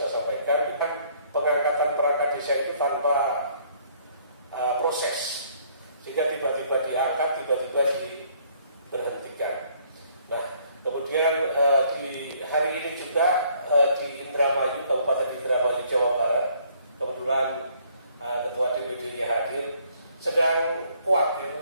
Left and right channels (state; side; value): inverted; both; correlation -0.63